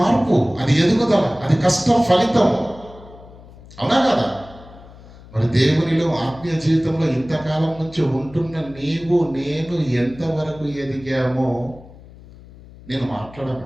అది ఎదుగుదల, అది కష్టం ఫలితం, అవునా కదా? మరి దేవునిలో ఆత్మీయ జీవితంలో ఇంతకాలం నుంచి ఉంటున్న నీవు నేను ఎంతవరకు ఎదిగామో నేను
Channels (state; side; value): noise; left; hum, 20 dB below the sound